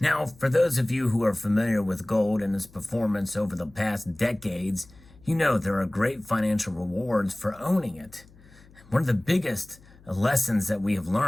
Now, for those of you who are familiar with gold and its performance over the past decades, you know there are great financial rewards for owning it. One of the biggest lessons that we have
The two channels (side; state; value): left; noise; hum, 25 dB below the sound